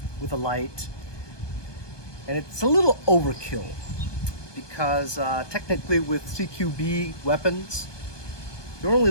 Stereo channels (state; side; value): late; right; 1.2 ms